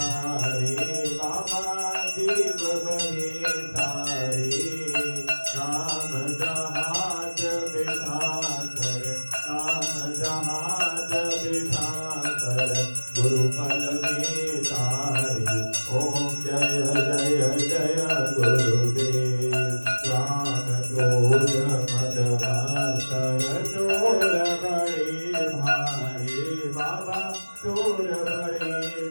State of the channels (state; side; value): inverted; both; correlation -1.00